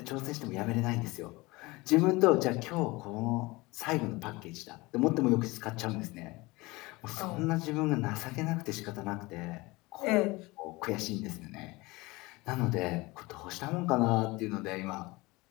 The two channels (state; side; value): quieter; right; 22.7 dB